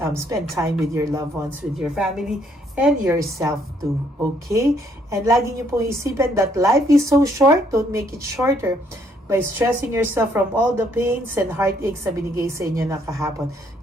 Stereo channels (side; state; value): both; normal; correlation 0.68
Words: spend time with your loved ones, with your family, and yourself too, okay? And lagi nyo pong isipin that life is so short. Don't make it shorter by stressing yourself from all the pains and heartaches na binigay sa inyo na kahapon.